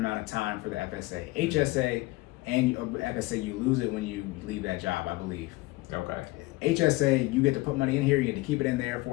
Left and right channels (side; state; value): right; quieter; 21.0 dB